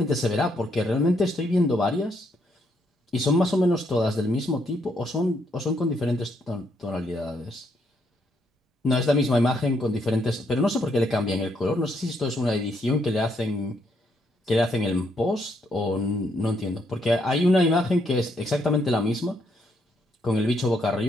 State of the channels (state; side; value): normal; both; correlation 0.75